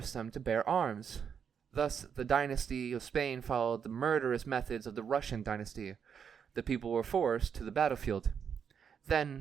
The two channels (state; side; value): quieter; left; 7.3 dB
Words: them to bear arms. Thus, the dynasty of Spain followed the murderous methods of the Russian dynasty. The people were forced to the battlefield.